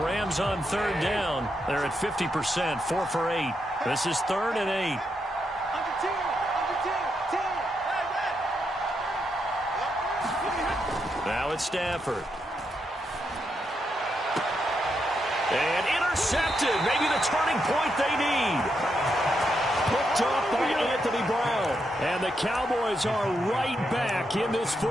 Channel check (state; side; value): normal; both; correlation 0.82